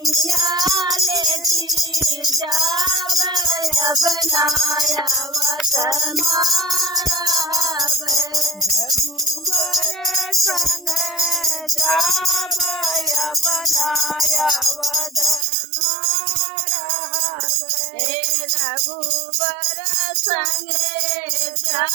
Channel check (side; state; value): left; drops out; at 15.5 s